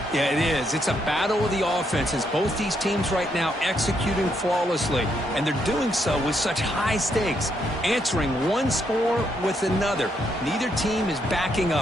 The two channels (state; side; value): normal; both; correlation 0.76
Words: Yeah, it is. It's a battle of the offenses. Both these teams right now executing flawlessly. And they're doing so with such high stakes. Answering one score with another. Neither team is backing